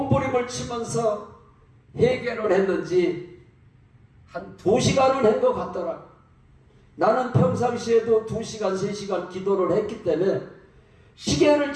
치면서 회개를 했는지 한 2시간은 한 것 같더라. 나는 평상시에도 2시간, 3시간 기도를 했기 때문에 시계를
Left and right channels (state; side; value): identical; both; correlation 1.00